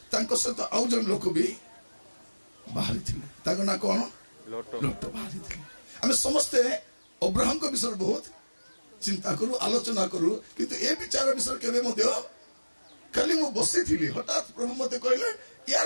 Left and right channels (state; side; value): inverted; both; correlation -1.00